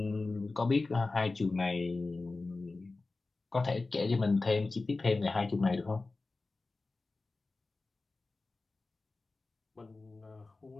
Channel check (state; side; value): quieter; right; 3.5 dB